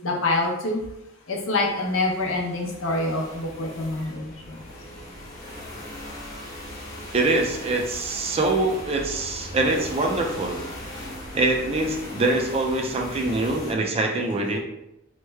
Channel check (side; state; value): both; normal; correlation 0.19